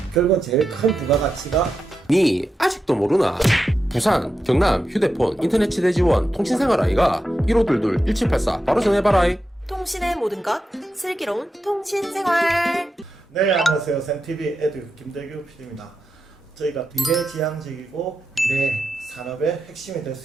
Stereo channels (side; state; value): both; normal; correlation 0.88